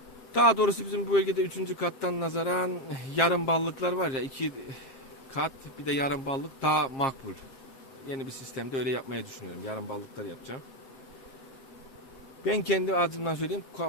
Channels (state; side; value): late; right; 7.8 ms